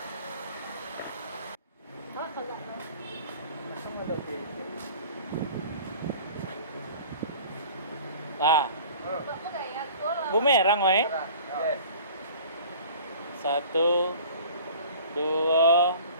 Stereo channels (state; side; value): inverted; both; correlation -0.46